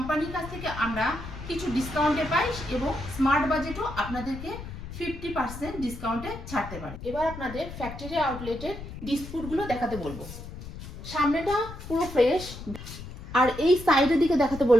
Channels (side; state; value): left; noise; rumble, 11 dB below the sound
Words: কাছ থেকে আমরা কিছু ডিসকাউন্টে পাই এবং স্মার্ট বাজেটও আপনাদেরকে 50% ডিসকাউন্টে ছাড়তে পারে। এবার আপনাদের ফ্যাক্টরি আউটলেটের ডিসপুটগুলো দেখাতে বলবো। সামনেটা পুরো ফ্রেশ, আর এই সাইডের দিকে দেখাতে